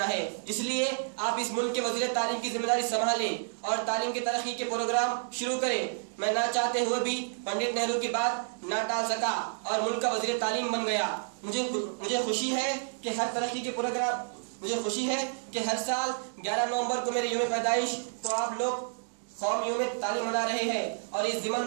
ہے. اس لیے آپ اس ملک کے وزیر تعلیم کی ذمہ داری سنبھالیں اور تعلیم کی ترقی کے پروگرام شروع کریں. میں نہ چاہتے ہوئے بھی پنڈت نہرو کی بات نہ ٹال سکا اور ملک کا وزیر تعلیم بن گیا. مجھے خوشی ہے کہ ہر ترقی کے پروگرام ہر سال 11 نومبر کو میرے یوم پیدائش کو آپ لوگ قوم یوم تعلیم منا رہے ہیں اور اس ضمن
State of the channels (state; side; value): silent; left; digital silence